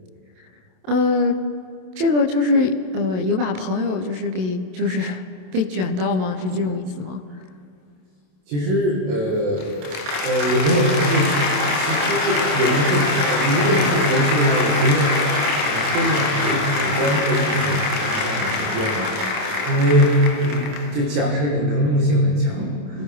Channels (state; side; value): late; left; 27 ms